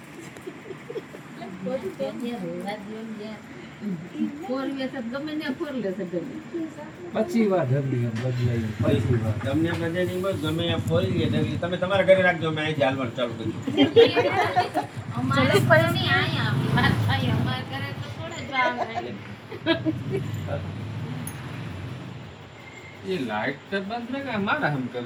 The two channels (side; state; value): both; identical; correlation 1.00